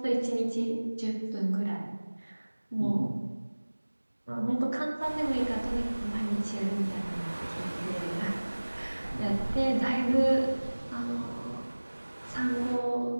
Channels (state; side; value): inverted; both; correlation -1.00